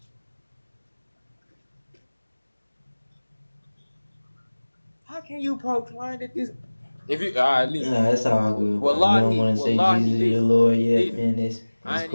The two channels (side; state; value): both; inverted; correlation -1.00